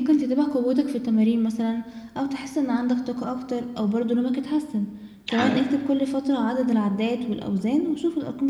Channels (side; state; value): both; identical; correlation 1.00